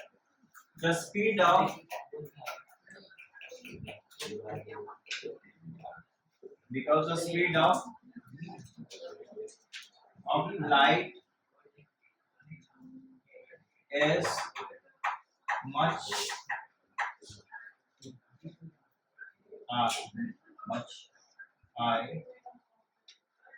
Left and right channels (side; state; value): both; identical; correlation 1.00